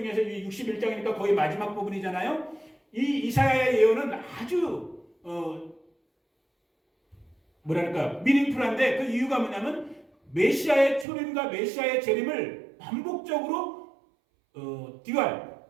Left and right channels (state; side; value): drops out; left; at 11.1 s